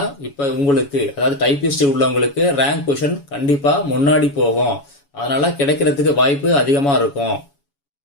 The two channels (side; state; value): right; late; 7.1 ms